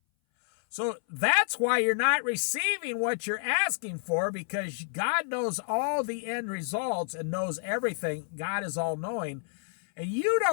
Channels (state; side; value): silent; right; 58 dB below the other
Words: So that's why you're not receiving what you're asking for, because God knows all the end results and knows everything. God is all-knowing. And you